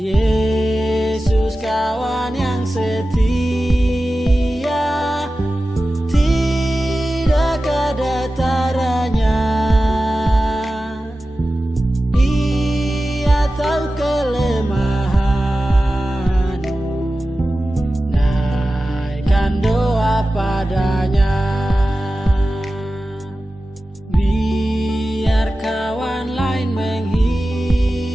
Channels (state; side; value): normal; both; correlation 0.94